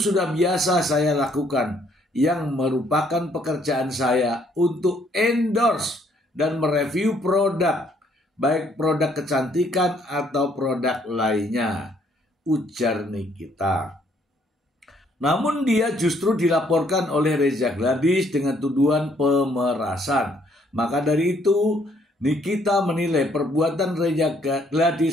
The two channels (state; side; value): normal; both; correlation 0.67